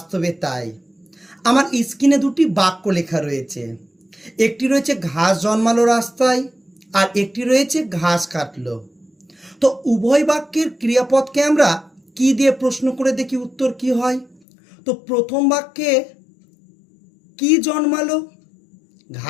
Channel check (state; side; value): drops out; right; at 14.4 s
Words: তাই। আমার স্ক্রিনে দুটি বাক্য লেখা রয়েছে। একটি রয়েছে ঘাস জন্মালো রাস্তায়, আর একটি রয়েছে ঘাস কাটলো। তো উভয় বাক্যের ক্রিয়াপদকে আমরা কি দিয়ে প্রশ্ন করে দেখি উত্তর কি হয়। তো প্রথম বাক্যে কি জন্মালো,